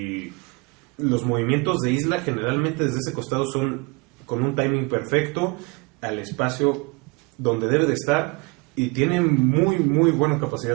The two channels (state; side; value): quieter; left; 28.6 dB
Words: los movimientos de Isla generalmente desde ese costado son con un timing perfecto, al espacio donde debe de estar, y tiene muy buena